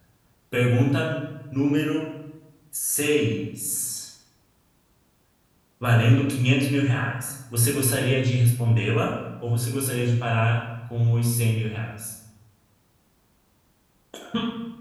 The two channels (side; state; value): both; identical; correlation 1.00